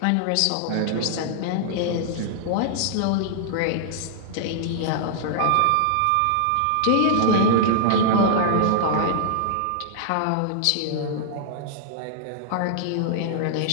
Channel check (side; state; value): both; different; correlation -0.01